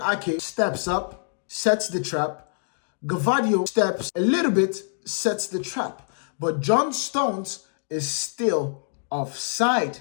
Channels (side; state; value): right; silent; digital silence